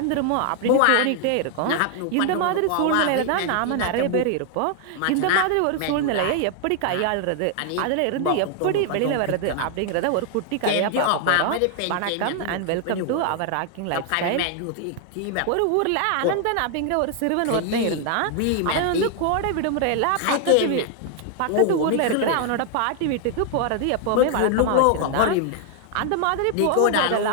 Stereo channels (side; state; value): both; different; correlation 0.00